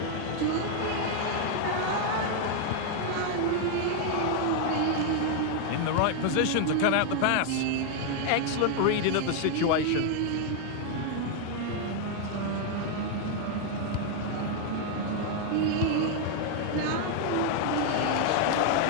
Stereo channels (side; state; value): both; different; correlation 0.00